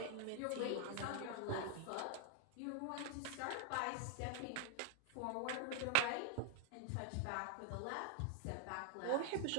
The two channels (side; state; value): both; different; correlation 0.00